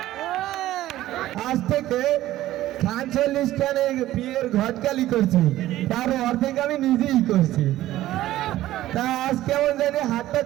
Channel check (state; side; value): quieter; left; 14.8 dB